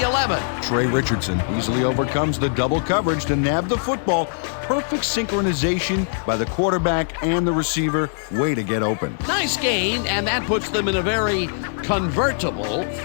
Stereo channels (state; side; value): silent; right; digital silence